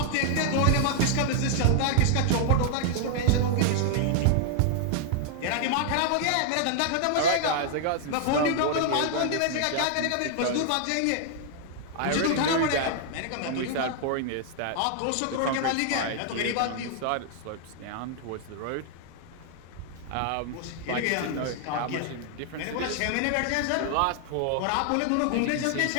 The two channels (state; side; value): different; both; correlation 0.00